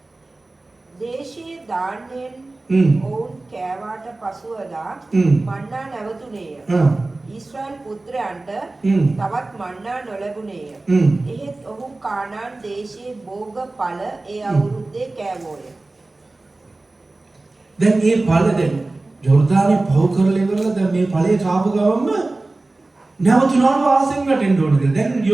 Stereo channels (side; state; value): left; quieter; 3.1 dB